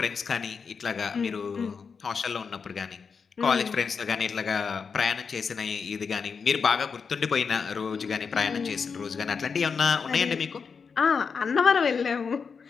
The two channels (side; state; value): right; quieter; 5.7 dB